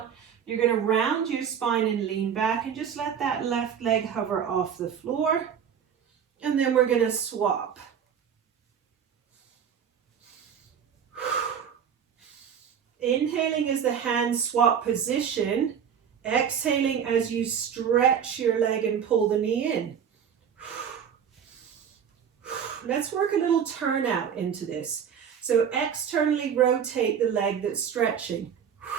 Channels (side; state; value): left; quieter; 7.9 dB